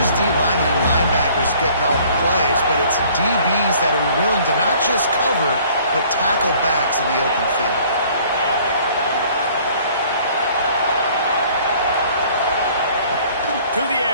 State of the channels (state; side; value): inverted; both; correlation -0.55